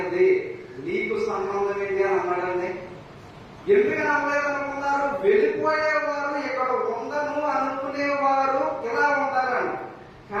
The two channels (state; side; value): identical; both; correlation 1.00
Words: నీకు సంబంధం ఏంటి అని అన్నాడండి. ఎందుకని అనలేదనుకున్నారు? వెళ్ళిపోయేవారు ఇక్కడ ఉండను అనుకునేవారు ఇలా ఉంటారండి.